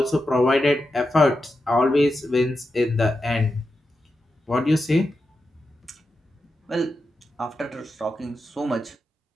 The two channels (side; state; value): both; normal; correlation 0.89